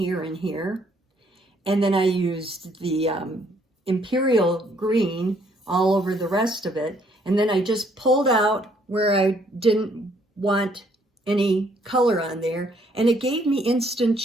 and here. And then I used the Imperial green all over the rest of it. And then I just pulled out where I didn't want any color on there. And it gave me instant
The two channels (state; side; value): normal; both; correlation 0.66